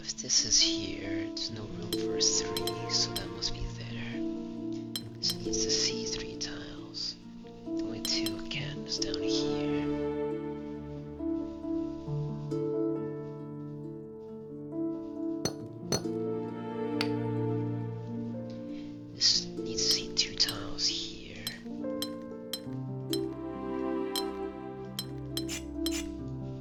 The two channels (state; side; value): identical; both; correlation 1.00